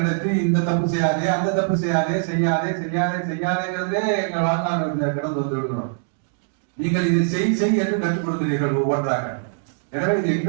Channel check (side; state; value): left; silent; digital silence